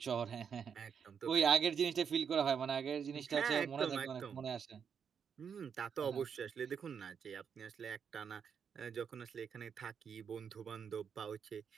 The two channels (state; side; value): quieter; left; 7.1 dB